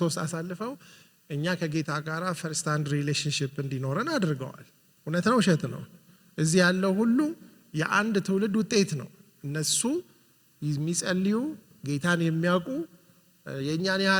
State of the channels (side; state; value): both; identical; correlation 1.00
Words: ውስጥ አሳልፈው እኛ ከጌታ ጋር ፈርስት ሃንድ ሪሌሽንሺፕ እንዲኖረን አድርገዋል። እውነት ነው ውሸት ነው? እዚህ ያለው ሁሉ የአንድ ትውልድ ውጤት ነው። እነሱ የሚጸልዩ ጌታን የሚያውቁ የእኛን